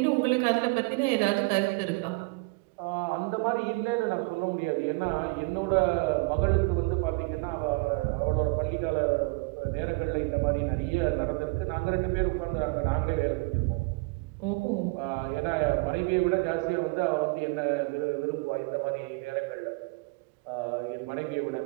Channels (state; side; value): quieter; left; 27.6 dB